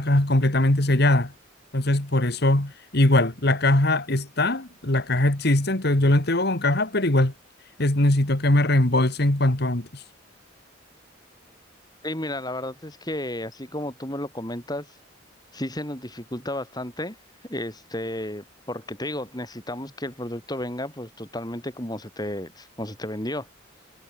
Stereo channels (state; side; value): normal; both; correlation 0.62